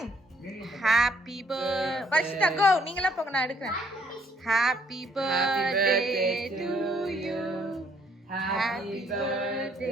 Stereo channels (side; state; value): both; normal; correlation 0.66